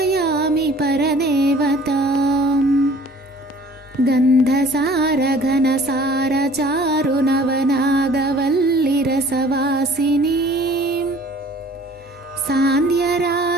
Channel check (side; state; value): both; normal; correlation 0.51